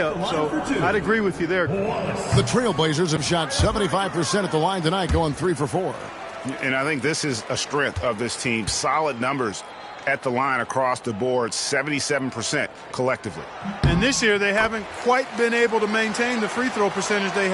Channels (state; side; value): identical; both; correlation 1.00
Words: so I'd agree with you there. The Trailblazers have shot 75% at the line tonight, going 3 for 4. And I think this is a strength of this team. Solid numbers at the line across the board, 77% collectively. And this year, they haven't quite been able to maintain the free throw percentage they